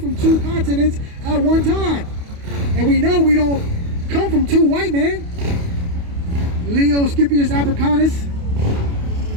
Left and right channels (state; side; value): late; left; 28 ms